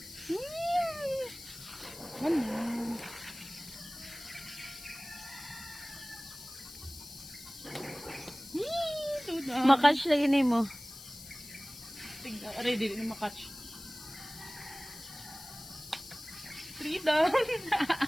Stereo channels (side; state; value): left; noise; hiss, 15 dB below the sound